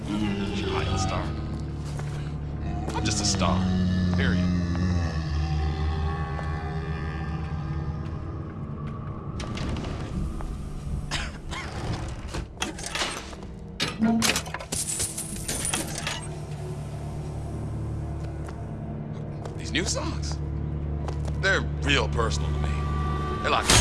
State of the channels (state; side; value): identical; both; correlation 1.00